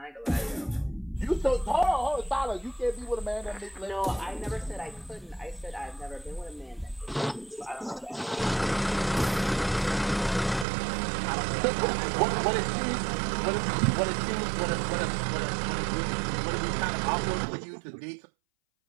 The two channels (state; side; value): drops out; left; at 10.7 s